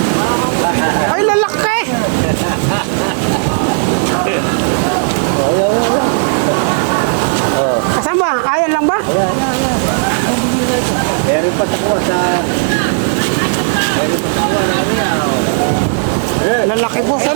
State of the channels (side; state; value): left; silent; digital silence